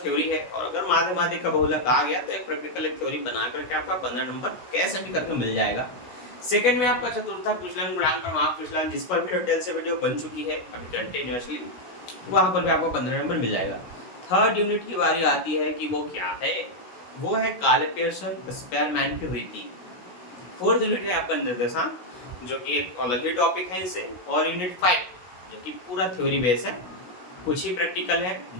है और अगर माध्यमाधिक का बहुलक आ गया तो एक प्रैक्टिकल एक थ्योरी बना करके आपका 15 नंबर कैसे भी करके मिल जाएगा। सेकंड में आपका चतुर्थक विचलन, गुणांक, प्रमाप विचलन, जिस पर भी डिटेल से वीडियो बन चुकी है अभी कंटिन्यूअसली, वहां पर भी आपको 15 नंबर मिल जाएगा। थर्ड यूनिट की बारी आती है कि वो क्या है, वो है काले पियर्सन स्पेयरमैन की रीति। फोर्थ यूनिट है आपका निर्देशांक, जो कि एक अलग ही टॉपिक है इसे, और यूनिट 5 जो कि पूरा थ्योरी बेस है, कुछ ही प्रैक्टिकल है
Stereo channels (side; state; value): right; late; 16 ms